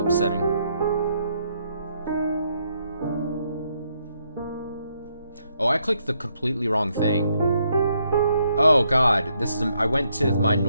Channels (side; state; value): both; inverted; correlation -0.75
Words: Oh, I clicked the completely wrong thing. Oh god, this is... I went to my